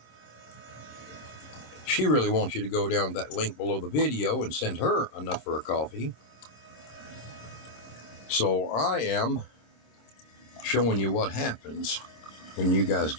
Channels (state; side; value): late; right; 27 ms